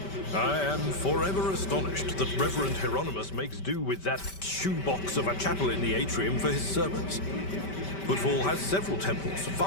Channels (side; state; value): right; late; 5.2 ms